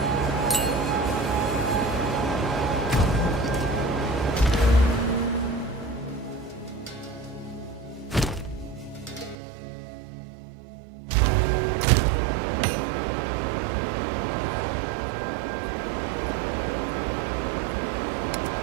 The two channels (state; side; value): drops out; left; at 9.3 s